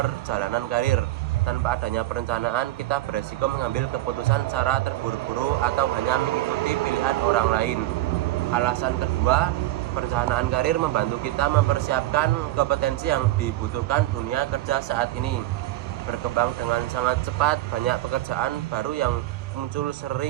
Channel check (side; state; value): left; quieter; 16.1 dB